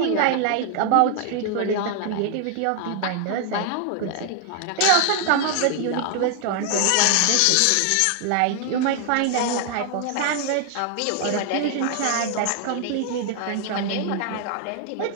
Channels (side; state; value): both; different; correlation 0.00